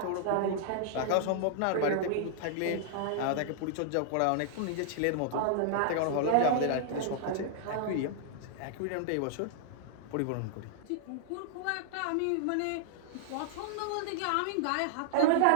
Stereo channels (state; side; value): different; both; correlation -0.01